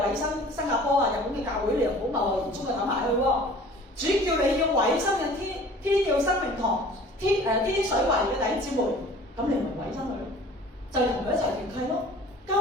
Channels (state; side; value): normal; both; correlation 0.47